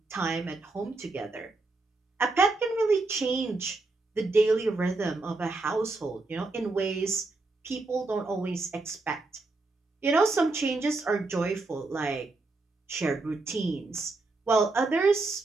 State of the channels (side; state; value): left; quieter; 3.3 dB